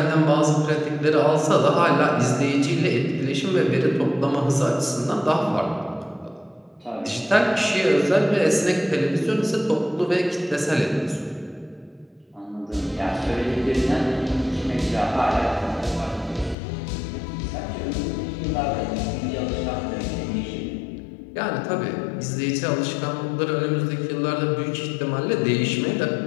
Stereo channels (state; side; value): drops out; right; at 16.6 s